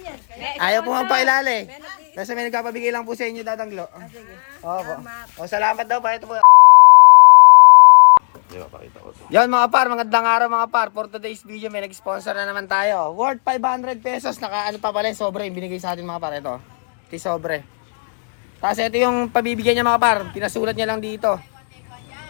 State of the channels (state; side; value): silent; right; digital silence